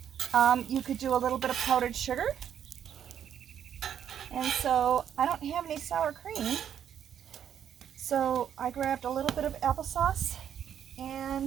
You could do a little bit of powdered sugar. And so I don't have any sour cream. So I grabbed a little bit of applesauce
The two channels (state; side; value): quieter; left; 9.2 dB